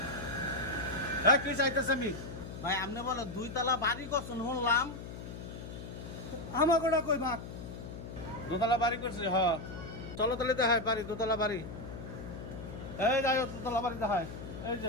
হ্যাঁ কি চাইতেছে আমি? ভাই আপনি বলো 2 তালা বাড়ি করছেন শুনলাম। আমাকে ওটা কই ভাগ 2 তালা বাড়ি করছে হ্যাঁ। চলো তাহলে দেখায় বাড়ি, 2 তালা বাড়ি। এই যাই 2 তালা বাড়ি দেখায়। এই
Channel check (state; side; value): noise; left; hum, 10 dB below the sound